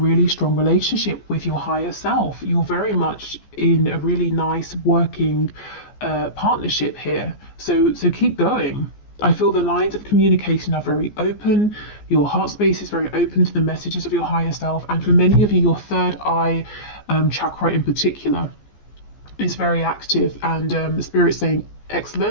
strong relationship with your higher self. You're very much in a really nice working partnership here. So keep going. I feel the lines of communication are very open. Your heart space is very open to the messages of your higher self. And for many of you, your third eye chakra in particular is very active. And Spirit's saying,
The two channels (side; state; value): right; late; 14 ms